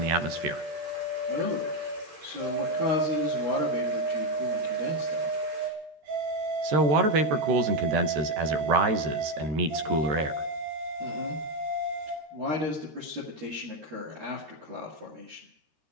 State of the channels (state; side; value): late; left; 13 ms